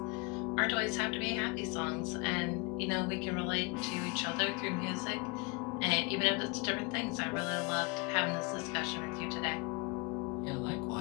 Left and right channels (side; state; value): right; quieter; 29.2 dB